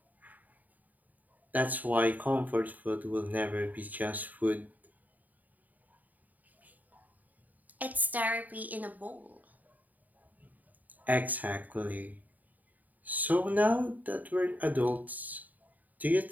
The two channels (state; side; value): late; left; 0.080 ms